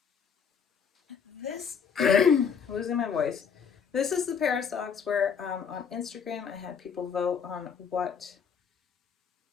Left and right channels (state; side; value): quieter; right; 6.8 dB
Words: This, losing my voice. This is the pair of socks where on Instagram I had people vote on